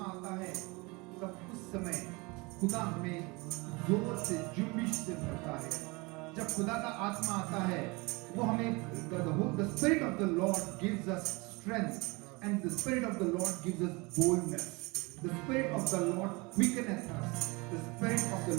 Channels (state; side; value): quieter; left; 26.2 dB